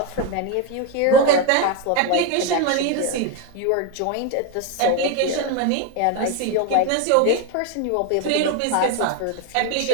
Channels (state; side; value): different; both; correlation 0.02